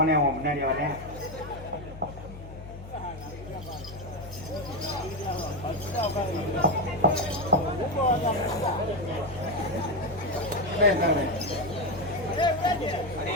அவன் முன்னாடி வரேன்.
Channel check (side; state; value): left; noise; hum, 13 dB below the sound